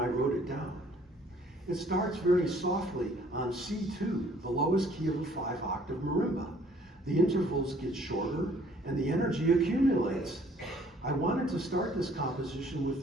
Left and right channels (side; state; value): both; normal; correlation 0.58